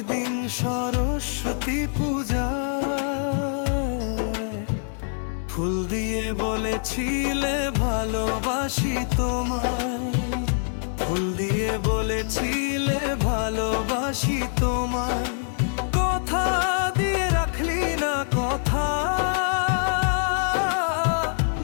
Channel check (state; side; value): silent; right; digital silence